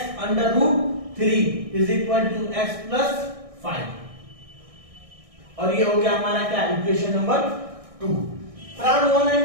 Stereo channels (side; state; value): left; late; 1.6 ms